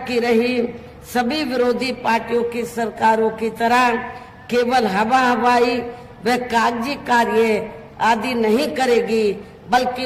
की रही सभी विरोधी पार्टियों की सरकारों की तरह केवल हवाई व कागजी कार्य आदि नहीं करेगी, बल्कि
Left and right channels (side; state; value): both; identical; correlation 1.00